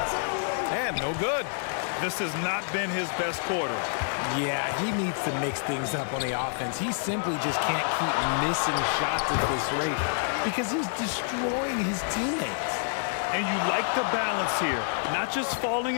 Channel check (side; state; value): right; silent; 59 dB below the other